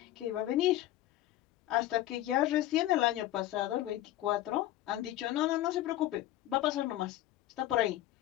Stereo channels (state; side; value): quieter; right; 14.3 dB